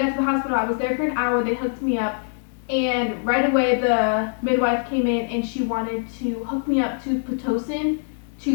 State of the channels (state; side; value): silent; right; digital silence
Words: to the hospital, I was there for an hour. They hooked me up. And right away, the midwife came in and she wanted to hook me up to Pitocin